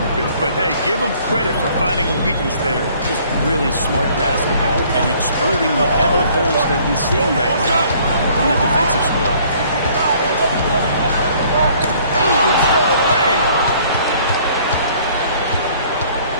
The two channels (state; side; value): inverted; both; correlation -0.58